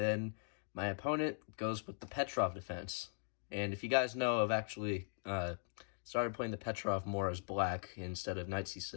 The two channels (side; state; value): right; silent; digital silence